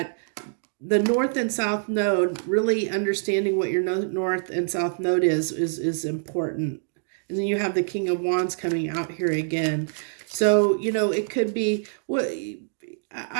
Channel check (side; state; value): left; silent; digital silence